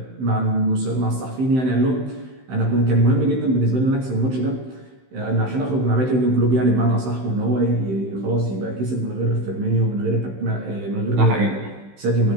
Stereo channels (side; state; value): left; late; 16 ms